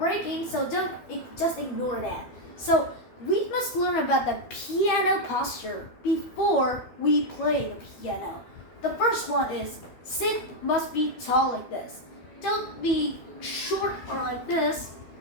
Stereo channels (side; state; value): right; late; 12 ms